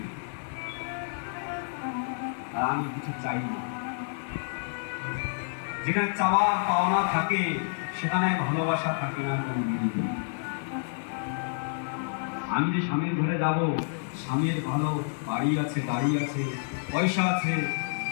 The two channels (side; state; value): right; silent; 59 dB below the other